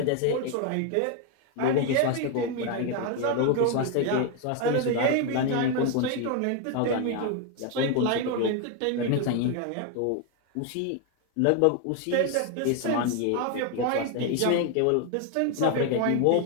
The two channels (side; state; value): both; different; correlation 0.01